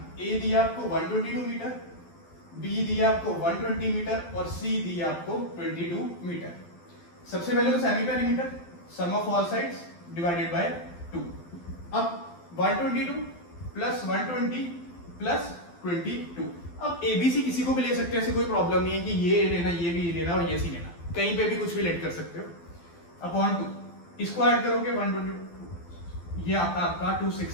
ए दिया आपको 122 मीटर, बी दिया आपको 120 मीटर और सी दिया आपको 22 मीटर। सबसे पहले तो semi perimeter, sum of all sides divided by 2। अब 122 प्लस 120 प्लस 22। अब एबीसी किसी को भी ले सकते हैं, ऐसे कोई प्रॉब्लम नहीं है कि ये लेना, ये भी लेना और ये सी लेना, कहीं पे भी कुछ भी लेट कर सकते हो। अपॉन 2, इसको ऐड करोगे 122, ये आता है आपका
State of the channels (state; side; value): late; right; 12 ms